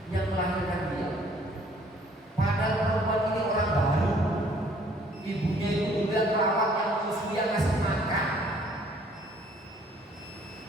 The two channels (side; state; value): both; normal; correlation 0.59